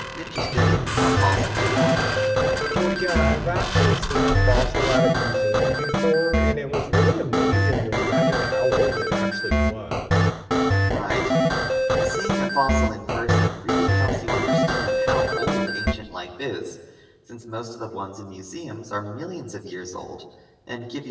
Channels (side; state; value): both; identical; correlation 1.00